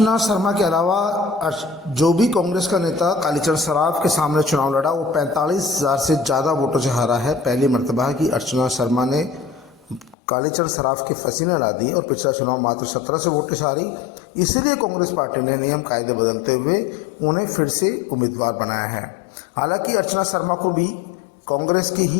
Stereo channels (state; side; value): drops out; right; at 10.2 s